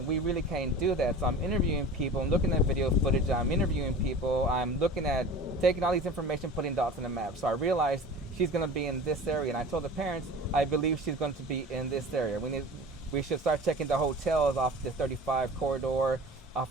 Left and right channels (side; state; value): both; normal; correlation 0.38